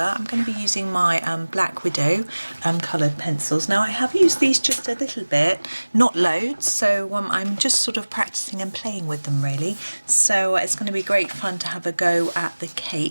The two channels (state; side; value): inverted; both; correlation -1.00